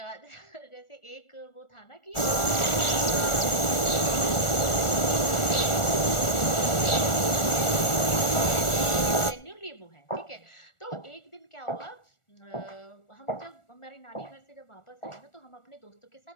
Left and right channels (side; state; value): right; late; 1.4 ms